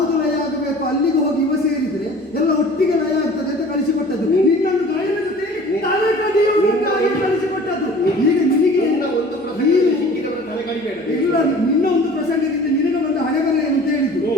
ಲಯ ಆಗಬೇಕು ಅಲ್ಲಿಗೆ ಹೋಗಿ ಇವ ಸೇರಿದ್ರೆ ಎಲ್ಲ ಒಟ್ಟಿಗೆ ಲಯ ಆಗ್ತದೆ ಅಂತ ಕಳಿಸಿಕೊಟ್ಟದ್ದು. ನಿನ್ನನ್ನು ಗಾಯನ ಜೊತೆಯಲ್ಲಿ ತಲೆ ಕಡಿಯುವುದಕ್ಕಾಗಿ ಕಳಿಸಿಕೊಟ್ಟದ್ದು. ಈಗ ನಿನಗೆ ಒಂದು ಪ್ರಸಂಗದಲ್ಲಿ ಸಿಕ್ಕಿದವರ ತಲೆ ಕಡಿಬೇಡ. ಇಲ್ಲ, ನಿನ್ನ ಒಂದು ಪ್ರಸಂಗದಿಂದ ನಿನಗೆ ಬಂದ ಹಣೆಬರೆ ಅಂತ ಹೇಳಿದ್ದು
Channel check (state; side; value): normal; both; correlation 0.45